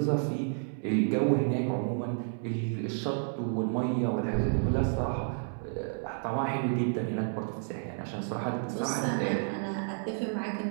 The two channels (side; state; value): left; silent; 57 dB below the other